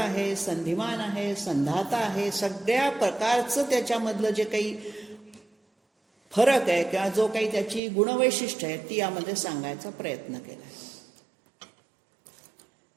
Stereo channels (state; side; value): drops out; left; at 7.8 s